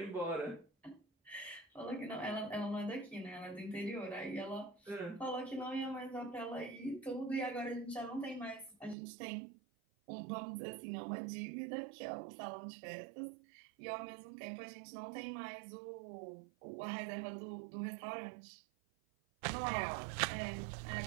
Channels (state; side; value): drops out; left; at 9.0 s